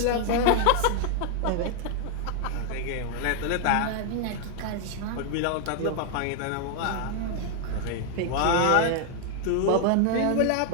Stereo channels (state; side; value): different; both; correlation 0.00